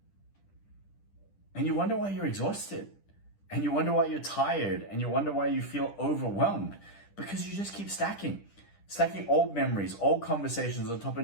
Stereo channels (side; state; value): right; late; 10 ms